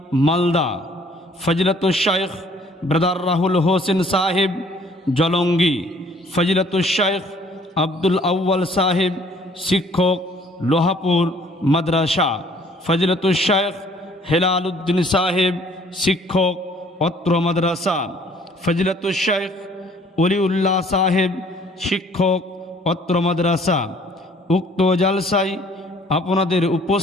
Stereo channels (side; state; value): both; normal; correlation 0.58